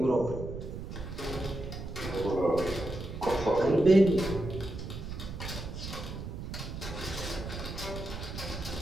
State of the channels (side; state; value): right; noise; rumble, 8 dB below the sound